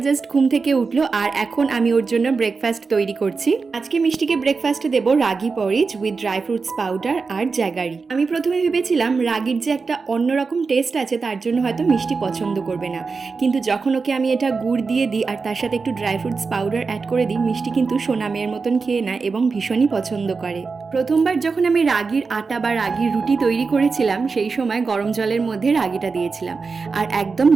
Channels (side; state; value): left; quieter; 4.6 dB